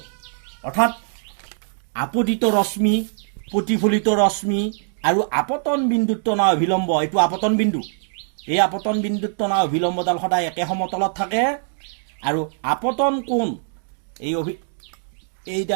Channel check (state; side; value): silent; left; digital silence